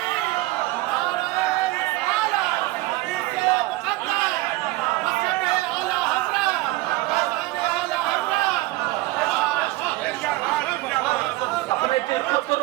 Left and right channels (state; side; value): quieter; left; 19.2 dB